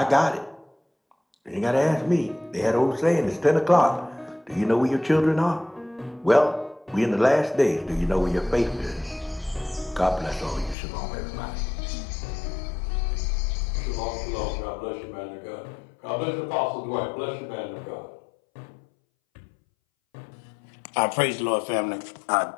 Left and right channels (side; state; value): right; drops out; at 10.8 s